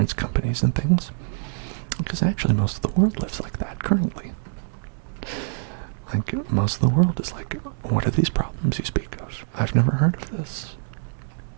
companies and things. Because actually most of the world lives like that currently. Like, most of the world is like, what are these problems you speak of? I've never heard of this.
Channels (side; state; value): left; silent; digital silence